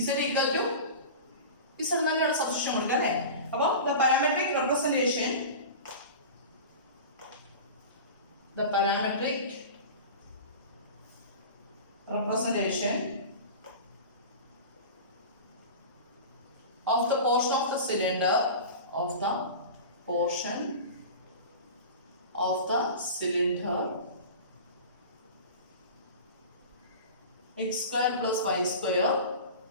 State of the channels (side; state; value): both; inverted; correlation -0.33